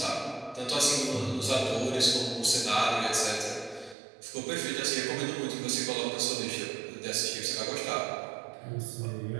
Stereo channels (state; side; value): drops out; left; at 4.0 s